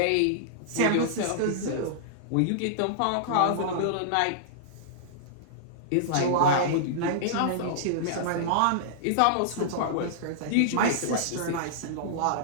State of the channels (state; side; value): different; both; correlation -0.02